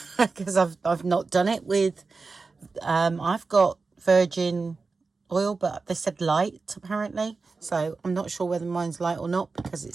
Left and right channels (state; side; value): quieter; left; 4.2 dB